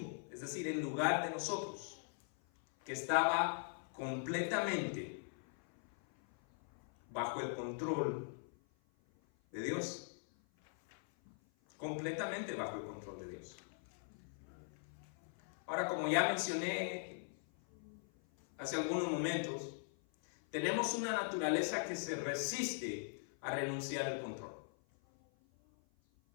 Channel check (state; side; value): silent; right; 51 dB below the other